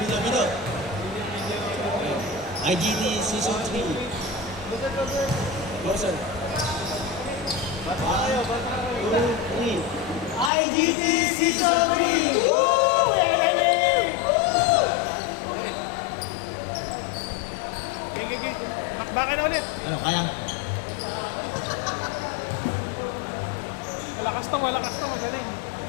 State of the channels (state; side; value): drops out; right; at 10.5 s